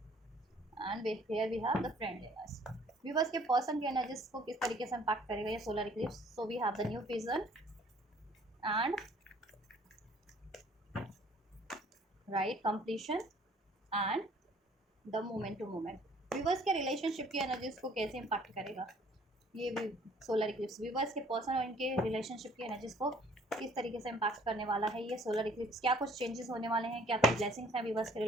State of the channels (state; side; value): normal; both; correlation 0.57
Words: And here we have the friendliness. Viewers के पर्सन की एनर्जीज को किस तरीके से इम्पैक्ट करेगा ये solar eclipse. So we have the new vision and right completion and the moment to moment. Viewers के रिलेशनशिप की एनर्जीज को कैसे इम्पैक्ट करेगा ये भी सोलर इक्लिप्स। व्यूअर्स के पर्सन और इनके रिलेशनशिप की एनर्जीज को किस तरीके से इम्पैक्ट करने वाला है ये सोलर इक्लिप्स। क्या कुछ चेंजेस होने वाले हैं, क्या कुछ ब्लेसिंग्स हैं व्यूअर्स के